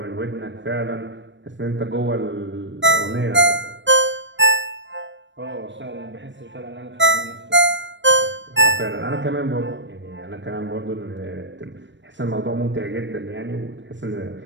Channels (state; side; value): late; left; 0.53 ms